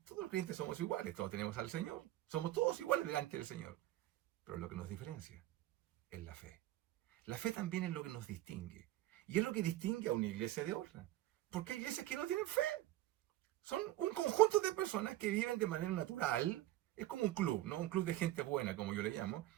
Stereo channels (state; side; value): quieter; left; 15.3 dB